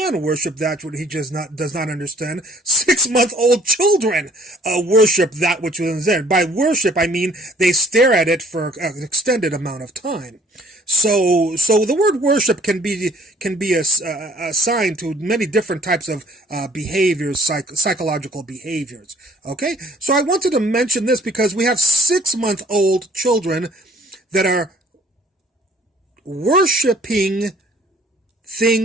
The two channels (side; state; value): both; normal; correlation 0.57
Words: worship that which he just does not understand, 6-month-old children worship that which was there. By worship, I mean they stare at it for an extended amount of time. So the word worship can be assigned to many different types of behaviors, psychological behaviors. Okay, so I wanted to mention this because we have 6-month-old children that are worshiping